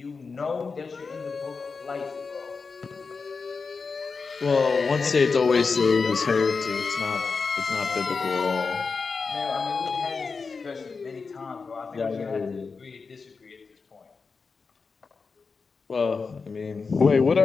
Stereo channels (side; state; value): right; quieter; 4.8 dB